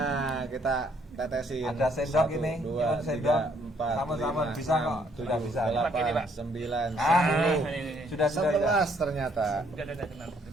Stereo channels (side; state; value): both; normal; correlation 0.67